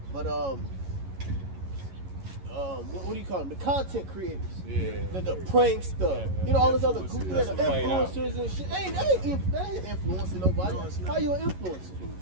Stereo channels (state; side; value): late; left; 11 ms